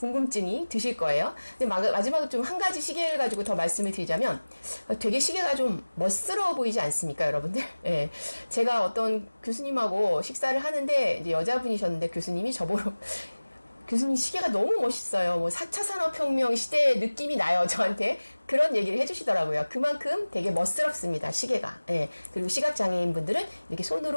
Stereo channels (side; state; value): both; inverted; correlation -1.00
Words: 드실 거예요. 근데 마지막으로 좀 한 가지 시계를 가지고 더 말씀을 드리자면, 되게 시계가 좀 멋스러워 보이지 않습니까, 여러분들? 예. 제가 어떤 교수님하고 식사를 하는데, 이제 여자분이셨는데, 교수님이 저보러, 교수님 시계가 너무 멋있어요. 뭐 4차 산업혁명 시대의 느낌이 나요. 저한테 그런 얘기를 해주시더라고요. 그만큼 되게 멋스럽습니다. 시계가. 예. 그리고 시각장애인 분들은 이렇게